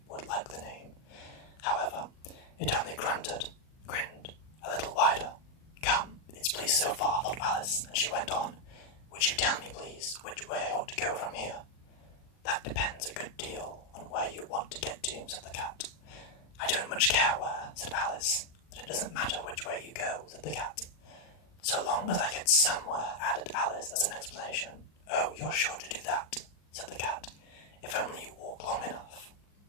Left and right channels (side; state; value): right; late; 40 ms